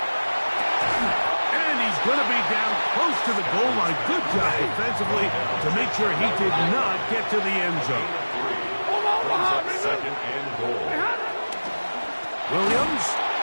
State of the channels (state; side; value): inverted; both; correlation -1.00